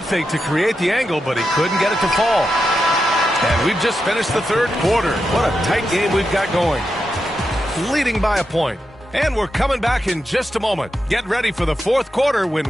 fake to create the angle, but he couldn't get it to fall. And we've just finished the third quarter. What a tight game we've got going. Leading by a point. And we're coming back in just a moment. Get ready for the fourth quarter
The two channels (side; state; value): both; normal; correlation 0.87